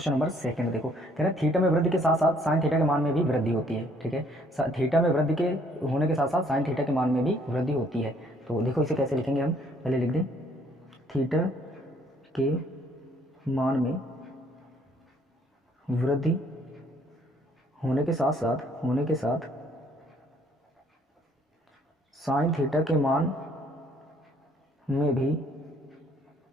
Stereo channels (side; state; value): both; normal; correlation 0.63